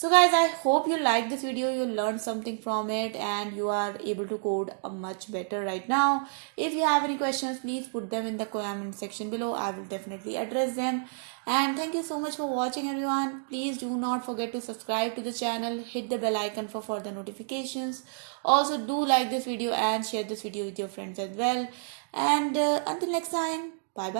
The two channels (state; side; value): silent; left; digital silence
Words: guys, I hope you liked this video, you learned something from it, and you are able to code much better right now. If you have any questions, please put them in the comment section below. I will definitely address them. And thank you so much for watching, everyone. Please do not forget to subscribe to the channel, hit the bell icon for further notifications. Also do like this video and share this video with your friends as well. And until next time, bye